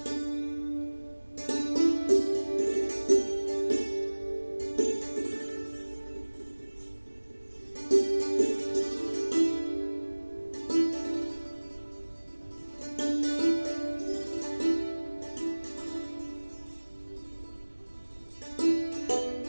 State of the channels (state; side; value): inverted; both; correlation -1.00